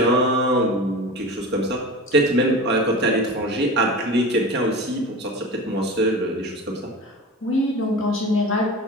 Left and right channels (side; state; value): both; normal; correlation 0.32